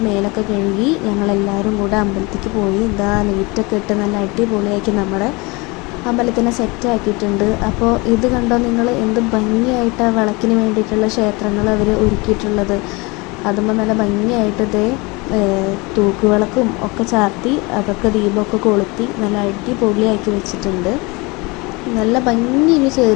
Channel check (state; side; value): quieter; right; 26.0 dB